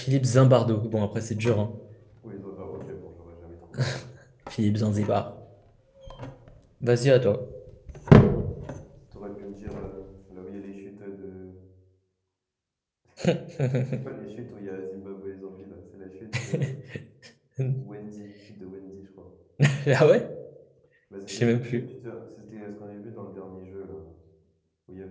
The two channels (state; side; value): identical; both; correlation 1.00